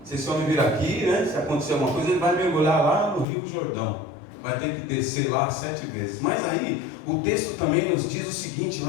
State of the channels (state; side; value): drops out; right; at 3.2 s